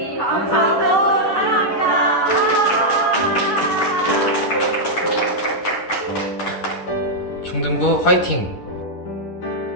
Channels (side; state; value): right; late; 10 ms